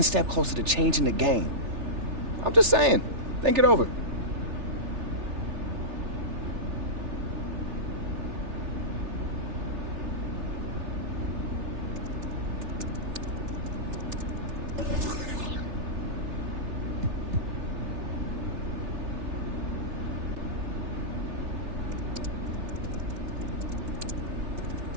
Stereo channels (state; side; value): late; left; 3.4 ms